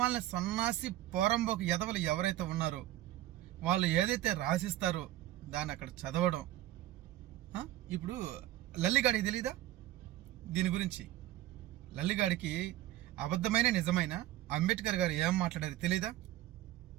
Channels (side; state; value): left; quieter; 14.5 dB